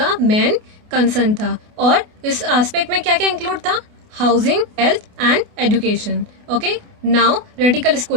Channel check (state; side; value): late; left; 28 ms